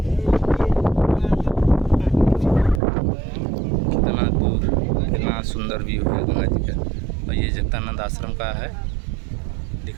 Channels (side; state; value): left; drops out; at 2.8 s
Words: कितना दूर, कितना सुंदर व्यू है गंगा जी का। और ये जगतानंद आश्रम का है,